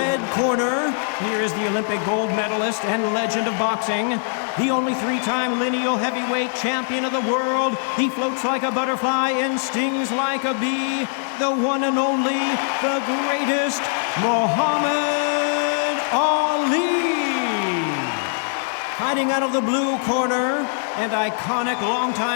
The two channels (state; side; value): silent; right; digital silence